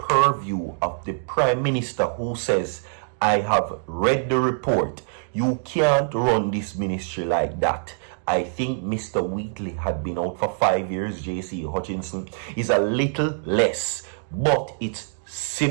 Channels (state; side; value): silent; left; digital silence